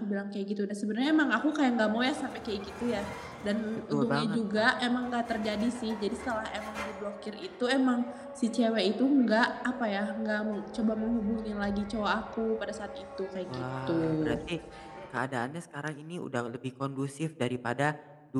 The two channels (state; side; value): identical; both; correlation 1.00